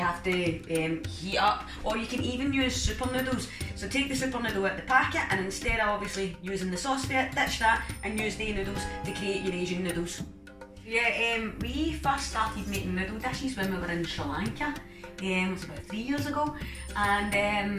to heat up, or you can even use super noodles. So take the super noodle out of the packet, and instead of obviously using the sauce bit, ditch that and use the noodles to create your Asian noodles. Yeah, we first started making noodle dishes when we were in Sri Lanka. It was about 3 years ago,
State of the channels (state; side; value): identical; both; correlation 1.00